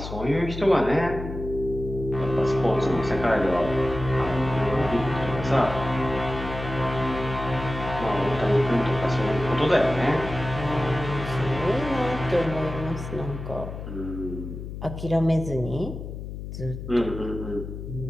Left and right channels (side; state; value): left; noise; hum, 8 dB below the sound